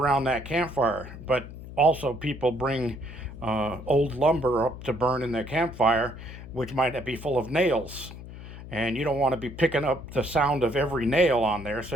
that campfire, but also people bring old lumber up to burn in their campfire, which might be full of nails. And you don't want to be picking up the sound of every nail on there, so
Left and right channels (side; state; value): left; noise; hum, 13 dB below the sound